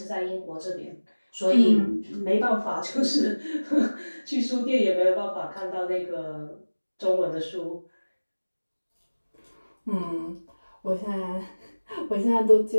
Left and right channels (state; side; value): inverted; both; correlation -1.00